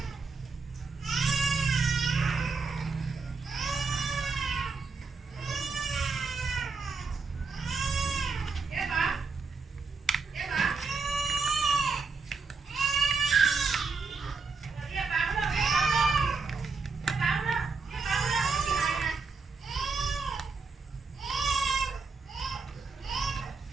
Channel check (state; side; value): quieter; left; 4.5 dB